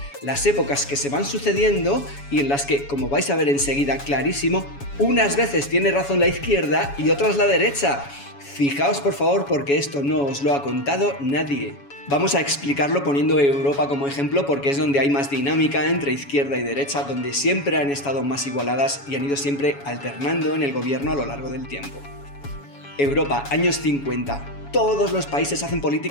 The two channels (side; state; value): right; late; 7.1 ms